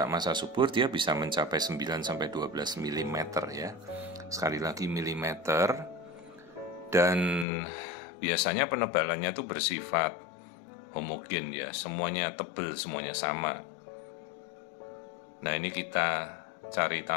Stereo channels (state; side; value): drops out; right; at 7.5 s